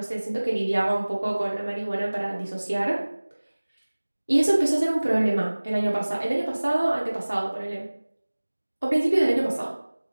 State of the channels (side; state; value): both; inverted; correlation -1.00